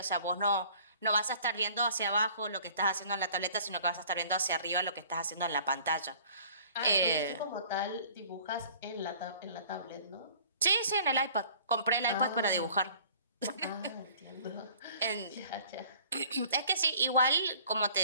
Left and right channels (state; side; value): inverted; both; correlation -0.52